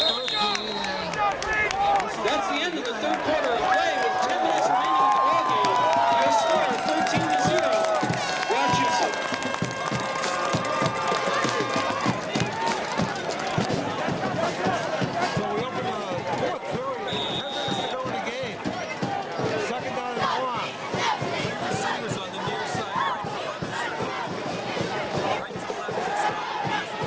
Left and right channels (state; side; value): identical; both; correlation 1.00